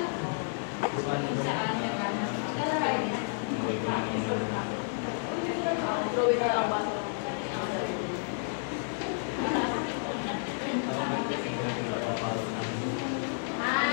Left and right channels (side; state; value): right; silent; digital silence